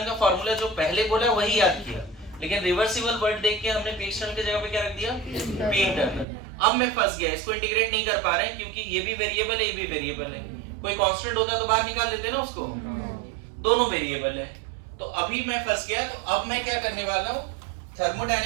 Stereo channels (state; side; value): drops out; left; at 6.2 s